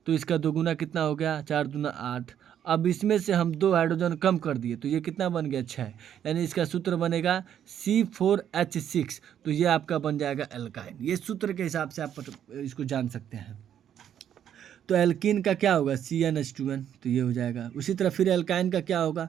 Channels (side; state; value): left; quieter; 9.7 dB